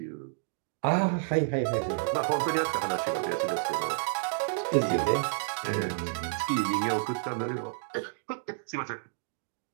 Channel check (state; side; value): silent; left; digital silence